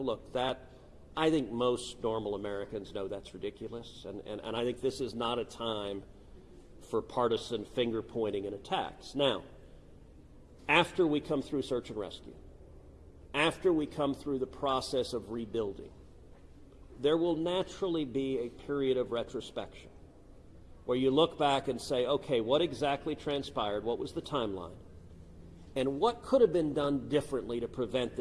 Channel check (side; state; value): both; identical; correlation 1.00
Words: that I think most normal Americans know that's ridiculous, and I think this is not a time for partisan finger-pointing and attacks. Now, after we come through search and rescue, after we come through the process of rebuilding, there will naturally be a period of retrospection where you look back and say, okay, what exactly transpired? What was the timeline? And what could have been done differently to prevent